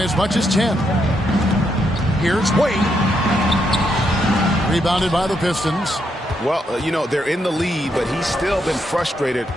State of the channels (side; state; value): both; normal; correlation 0.79